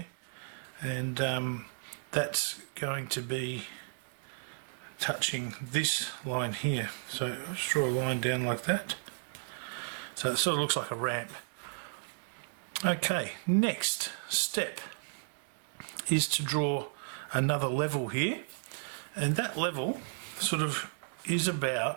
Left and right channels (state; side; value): silent; left; digital silence